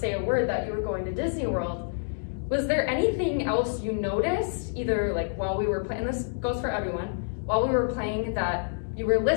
a word that you were going to Disney World. Was there anything else you noticed, either like while we were playing, this goes for everyone, while we were playing that you were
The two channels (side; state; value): right; silent; digital silence